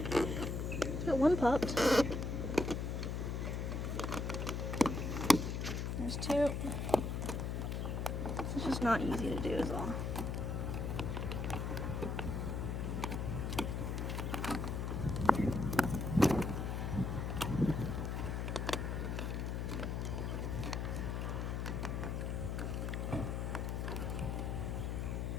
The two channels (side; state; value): left; noise; hum, 1 dB below the sound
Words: Got one popped. There's two. This is just not easy to do is all.